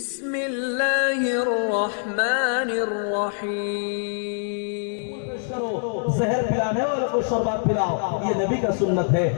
রহমানির রহিম। जहर पिलाने वालों को शरबत पिलाओ, ये नबी का सुन्नत है।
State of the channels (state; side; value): silent; right; digital silence